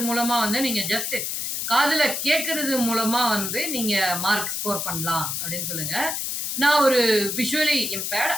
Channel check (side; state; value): left; noise; hiss, 2 dB below the sound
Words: மூலமா நீங்க ஜஸ்ட் காதுல கேட்கறது மூலமா நீங்க மார்க் ஸ்கோர் பண்ணலாம் அப்படின்னு சொல்லுங்க. நான் ஒரு விஷுவலி இம்பேர்ட்,